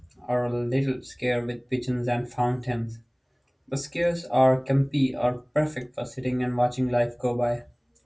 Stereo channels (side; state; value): both; identical; correlation 1.00